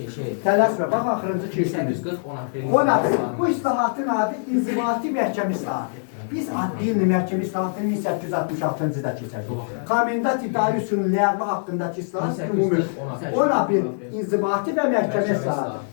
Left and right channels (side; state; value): right; silent; 63 dB below the other